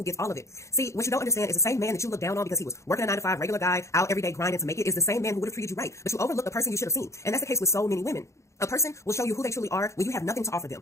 gets all of it. See, what you don't understand is the same man that you look down on because he was working a 9 to 5, regular guy, out every day grinding to make it, is the same man who would have treated you right, but you overlook the person you should have seen. And that's the case with so many women. A person will show you who they truly are when you have nothing to offer them.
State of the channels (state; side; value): late; right; 0.14 ms